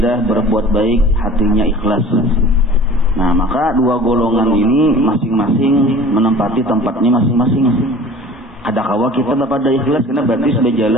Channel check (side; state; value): both; normal; correlation 0.44